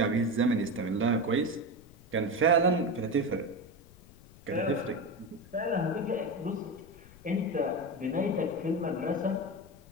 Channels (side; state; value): left; noise; rumble, 23 dB below the sound